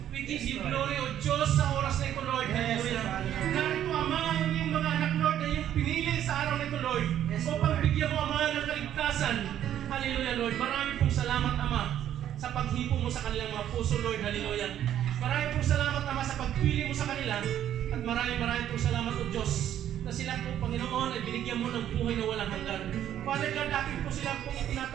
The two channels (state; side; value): quieter; left; 10.9 dB